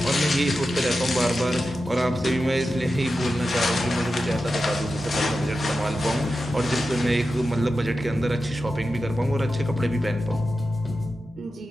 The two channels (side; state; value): both; normal; correlation 0.91